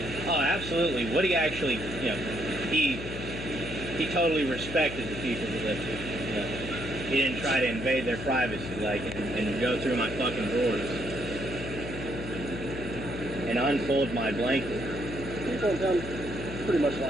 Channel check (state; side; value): noise; left; hum, 8 dB below the sound